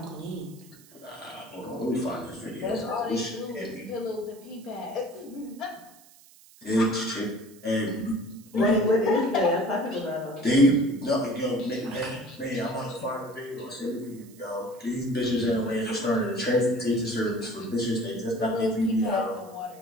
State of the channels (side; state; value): right; noise; hiss, 24 dB below the sound